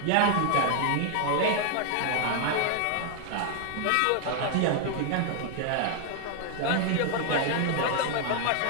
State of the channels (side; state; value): both; different; correlation 0.00